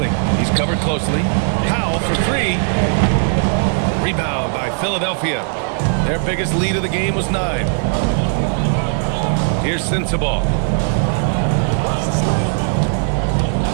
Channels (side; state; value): left; silent; 68 dB below the other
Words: He's covered closely. Powell for 3. Rebound by Philadelphia. Their biggest lead of the game was 9. Here's Sensabaugh.